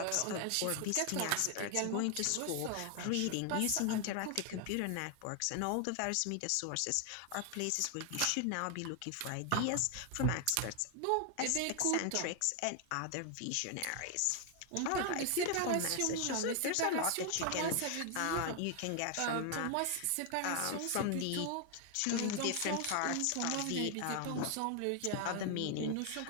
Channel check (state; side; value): different; both; correlation 0.00